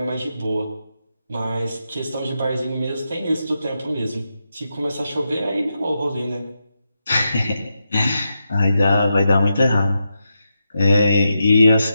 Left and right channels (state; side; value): inverted; both; correlation -0.86